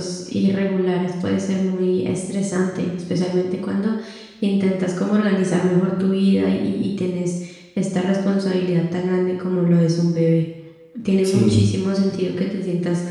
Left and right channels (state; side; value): identical; both; correlation 1.00